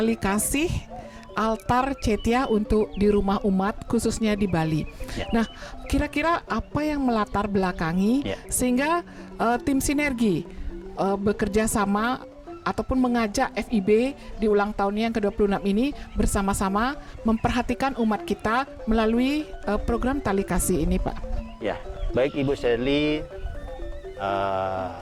kasih altar Cetya untuk di rumah umat khususnya di Bali. Ya. Nah, kira-kira apa yang melatar belakangi sehingga tim sinergi bekerja sama ataupun mengajak FIB di ulang tahunnya yang ke-26 ini bersama-sama memperhatikan umat kita melalui program tali kasih ini, Pak? Ya, baik Ibu Shirley,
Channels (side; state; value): both; identical; correlation 1.00